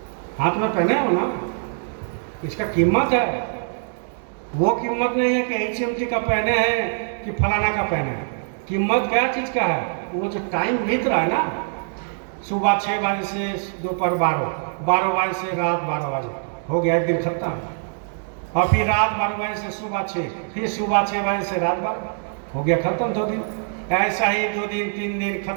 हाथ में पहने हो ना, इसका कीमत है। वो कीमत नहीं है कि HMT का पहने हैं कि फलाना का पहने हैं। कीमत क्या चीज का है? वो जो टाइम बीत रहा है ना, सुबह 6 बजे से दोपहर 12 बजे से रात 12 बजे, हो गया एक दिन खत्म। और फिर रात 12 बजे से सुबह 6, फिर सुबह 6 बजे से रात 12, हो गया खत्म 2 दिन। ऐसा ही 2 दिन 3 दिन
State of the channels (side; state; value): left; silent; digital silence